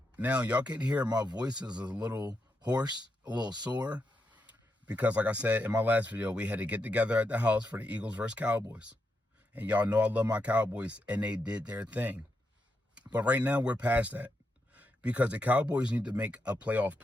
Now, y'all can hear my voice is a little hoarse, a little sore, because like I said in my last video, we had to get together at the house for the Eagles versus Cowboys. And y'all know I love my Cowboys, and they did their thing. But right now, we're past that, because the Cowboys need to make a playoff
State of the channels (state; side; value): normal; both; correlation 0.84